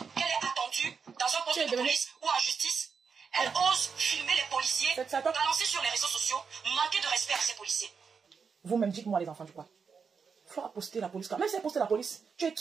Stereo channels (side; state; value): left; quieter; 5.8 dB